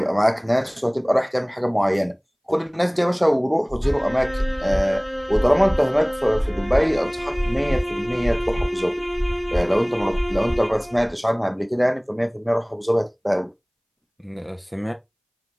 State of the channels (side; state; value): both; identical; correlation 1.00